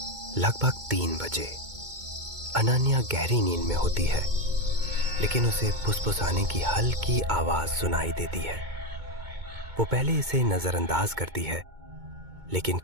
लगभग 3 बजे। अनन्या गहरी नींद में होती है, लेकिन उसे फुसफुसाने की हल्की आवाज सुनाई देती है। वो पहले इसे नजरअंदाज करती है, लेकिन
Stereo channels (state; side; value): late; left; 2.2 ms